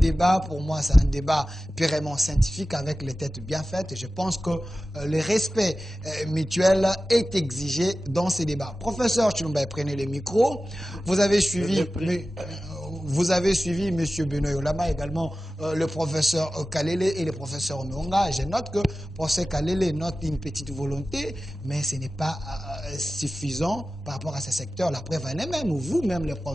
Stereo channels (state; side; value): normal; both; correlation 0.95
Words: pour moi, c'est un débat purement scientifique avec les têtes bien faites. Et je pense que le respect mutuel est exigé dans ces débats. Professeur Chilomba, prenez le micro. Vous avez suivi M. Benoît Yolama, également le professeur Kalele et le professeur Mwanga. Je note que le professeur Kalele note une petite volonté, mais ce n'est pas suffisant par rapport à ce secteur. La preuve en est même, vous-même, les